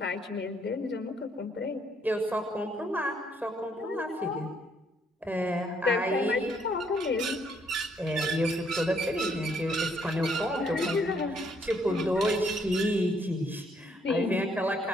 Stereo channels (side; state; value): both; normal; correlation 0.69